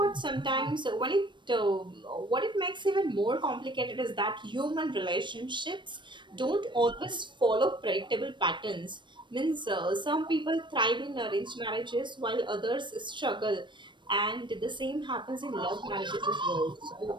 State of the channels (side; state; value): left; late; 0.22 ms